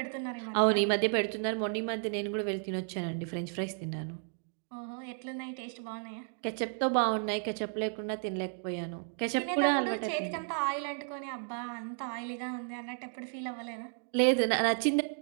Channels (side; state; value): left; silent; 56 dB below the other